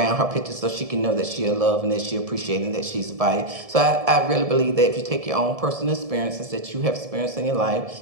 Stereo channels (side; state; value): left; late; 1.7 ms